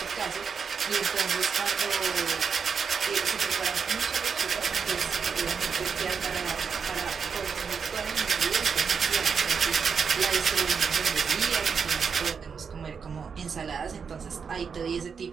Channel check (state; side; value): quieter; left; 6.1 dB